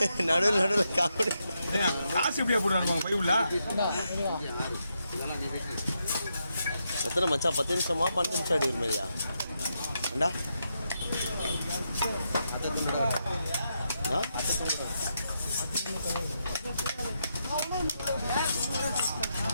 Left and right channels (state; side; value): inverted; both; correlation -0.82